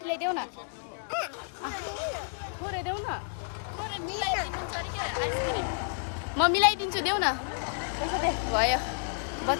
देऊ न थोरै देऊ न थोरै मिलाइदिनुहुन्छ अरे क्या आइसक्रिम म मिलाइदिन्छु देऊ न भयो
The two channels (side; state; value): right; silent; digital silence